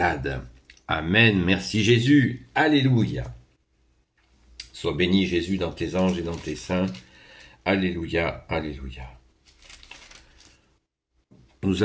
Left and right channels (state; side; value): identical; both; correlation 1.00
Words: Amen. Merci Jésus. Alléluia. Sois béni Jésus dans tes anges et dans tes saints. Alléluia. Alléluia. Nous